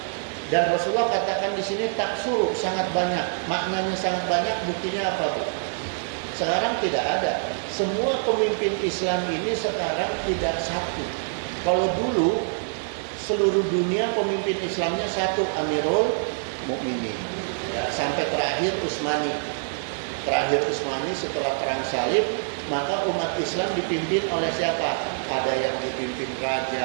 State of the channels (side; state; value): left; silent; digital silence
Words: Dan Rasulullah katakan di sini taksuru, sangat banyak. Maknanya sangat banyak. Buktinya apa Bu? Sekarang tidak ada. Semua pemimpin Islam ini sekarang tidak satu. Kalau dulu seluruh dunia pemimpin Islamnya satu, Amirul Mukminin. Ya, sampai terakhir Utsmani. Terakhir Utsmani setelah perang salib, maka umat Islam dipimpin oleh siapa? Ada yang dipimpin